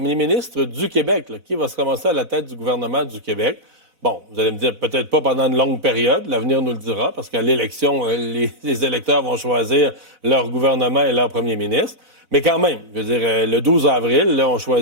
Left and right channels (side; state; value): left; late; 4.0 ms